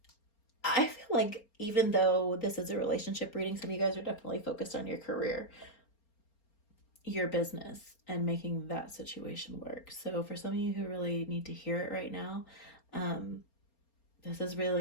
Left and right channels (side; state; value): right; late; 4.3 ms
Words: I feel like even though this is a relationship reading, some of you guys are definitely focused on your career, your business, and making that situation work. So for some of you who really need to hear it right now, this is